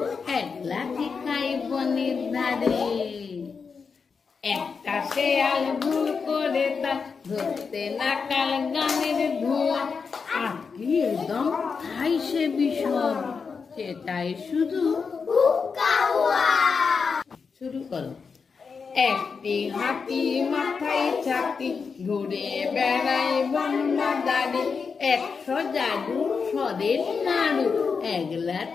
একলা খাই বনের ধারে। একটা শেয়াল ভুল করে তার ধরতে নাকাল গানের ধোঁয়া, আর কি একদম খাই সে বিষম, সেটাই শুধু শুরু করো। একটি হাতি মাথায় ছাতি, ঘুরে বেড়ায় বন বাদারে, 100 জাদু সরের নাড়ু,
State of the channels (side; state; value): right; quieter; 5.4 dB